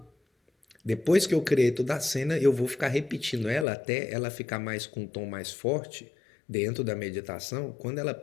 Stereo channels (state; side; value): drops out; right; at 3.7 s